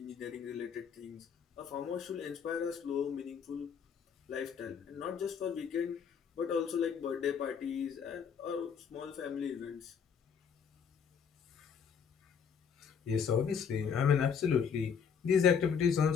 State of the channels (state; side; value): quieter; right; 6.9 dB